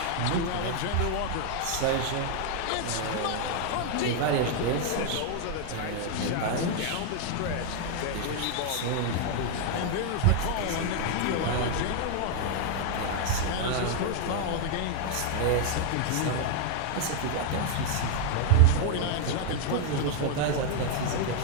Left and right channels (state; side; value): different; both; correlation 0.00